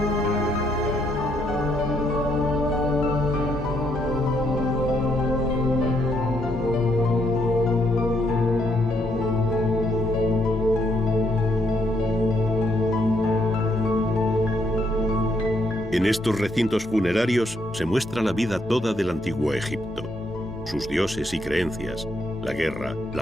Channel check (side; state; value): both; normal; correlation 0.73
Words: En estos recintos funerarios se muestra la vida toda del antiguo Egipto, sus dioses y creencias, la guerra,